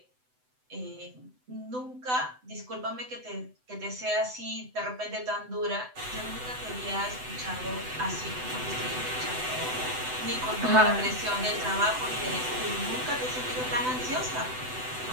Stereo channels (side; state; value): left; late; 7.9 ms